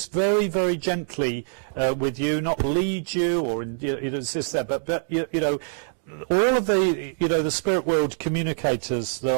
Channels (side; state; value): left; silent; digital silence